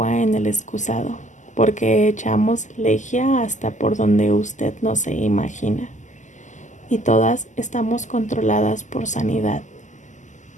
en el excusado, porque echamos lejía hasta por donde usted no se imagina. y todas estamos controladas por sanidad.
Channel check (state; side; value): late; right; 0.35 ms